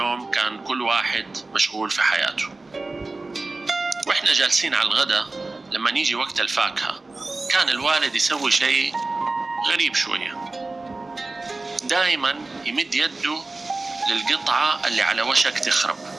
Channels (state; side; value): quieter; left; 3.3 dB